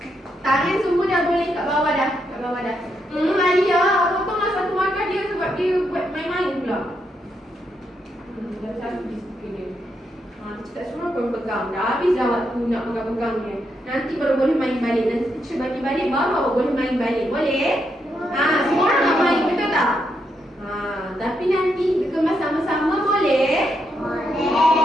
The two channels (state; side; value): normal; both; correlation 0.80